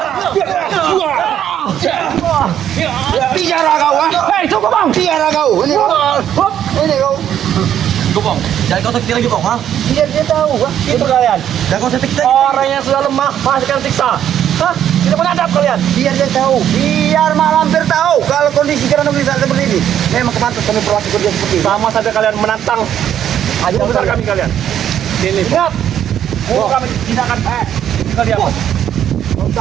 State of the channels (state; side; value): quieter; left; 10.2 dB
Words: Bicara kau. Hei, cukup bang. Bicara kau. Ini kau. Ini kau. Bong, jangan kau sakit lagi, Bong. Ha? Biar dia tahu. Itu kalian. Jangan kau sakit lagi. Orang yang sudah lemah masih akan siksa. Hah? Tidak menghadap kalian. Biar dia tahu. Biar Mak Lampir tahu kalau kondisi Gerhana bisa seperti ini. Memang kepantas kami perlakukan dia seperti ini. Sama saja kalian menantang Ayo besar kami kalian. Sini. Ingat, guru kami tidak akan kalian.